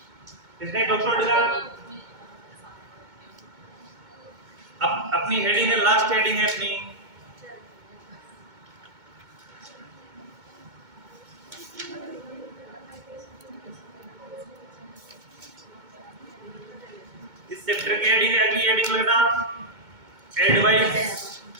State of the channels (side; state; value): left; late; 2.2 ms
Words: इसने डॉक्टर अपनी हेडिंग है, लास्ट हेडिंग है अपनी, इस चैप्टर की हेडिंग है, अगली हेडिंग लगना एडवाइस,